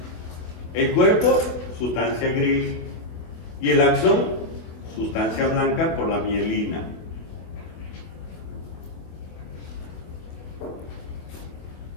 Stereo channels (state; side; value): late; right; 25 ms